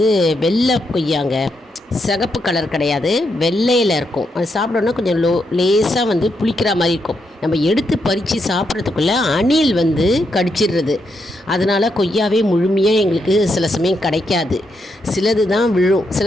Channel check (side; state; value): both; normal; correlation 0.81